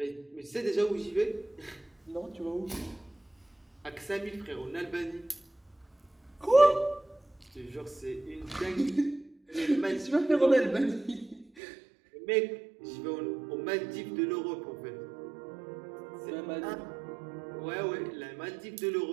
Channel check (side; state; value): left; drops out; at 11.5 s